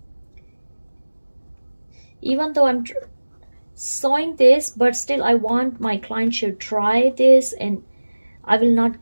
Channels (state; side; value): inverted; both; correlation -1.00